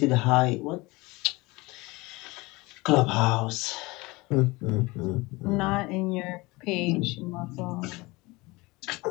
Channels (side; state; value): right; quieter; 23.1 dB